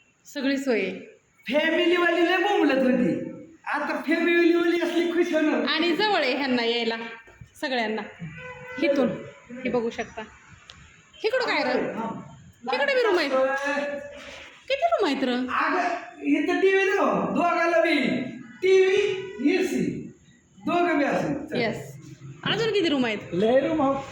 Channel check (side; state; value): both; identical; correlation 1.00